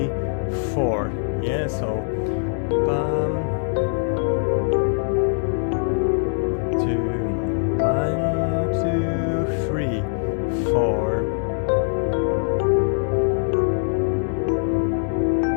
4. Yeah, so bum, 2, 1, 2, 3, 4.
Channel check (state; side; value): silent; right; digital silence